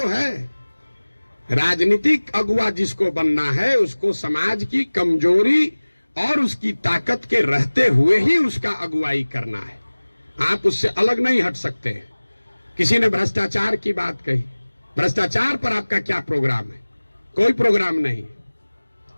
है। राजनीतिक अगुवा जिसको बनना है उसको समाज की कमजोरी और उसकी ताकत के रहते हुए ही उसका अगुवाई करना है। आप उससे अलग नहीं हट सकते। किसी ने भ्रष्टाचार की बात कही, भ्रष्टाचार पर आपका क्या प्रोग्राम है? कोई प्रोग्राम नहीं।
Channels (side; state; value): both; inverted; correlation -1.00